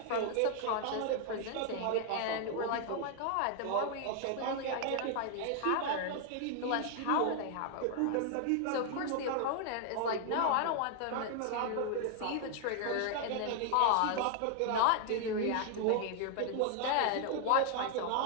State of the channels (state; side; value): different; both; correlation 0.00